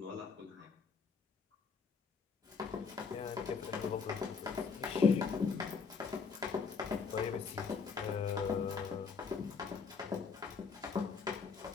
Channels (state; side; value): quieter; right; 5.4 dB